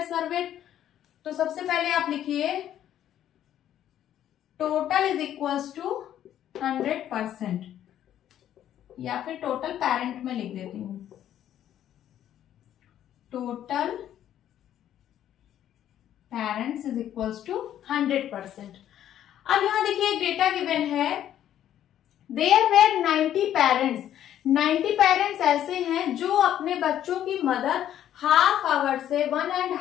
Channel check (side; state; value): right; quieter; 11.1 dB